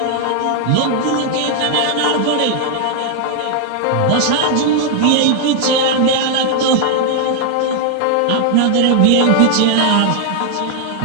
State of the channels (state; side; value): different; both; correlation 0.00